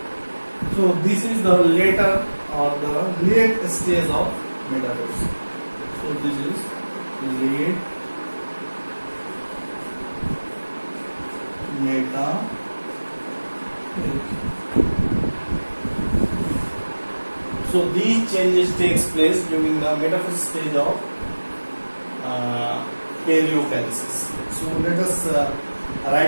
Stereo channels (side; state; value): both; inverted; correlation -1.00